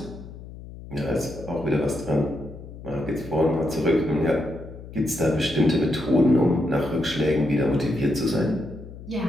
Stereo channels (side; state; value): left; noise; hum, 14 dB below the sound